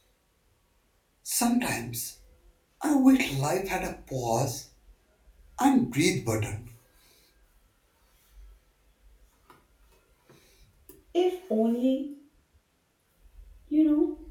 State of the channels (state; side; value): identical; both; correlation 1.00